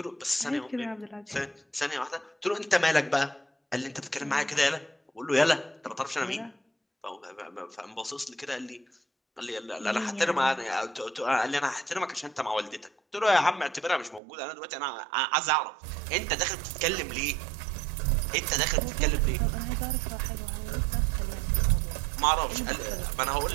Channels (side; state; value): left; drops out; at 14.2 s